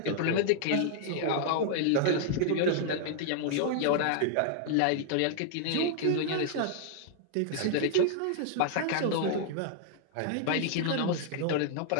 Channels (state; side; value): different; both; correlation -0.01